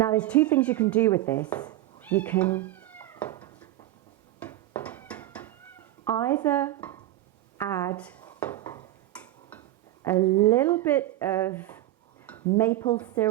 there's 2 things you can do with this. You can either add a little bit of maple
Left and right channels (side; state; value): left; quieter; 15.1 dB